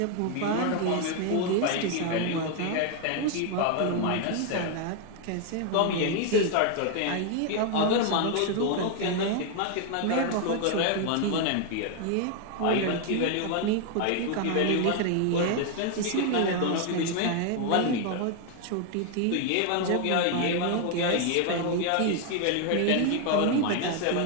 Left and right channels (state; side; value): different; both; correlation 0.00